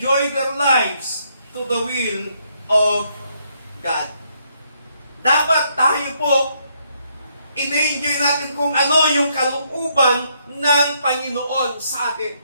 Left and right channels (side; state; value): both; inverted; correlation -0.73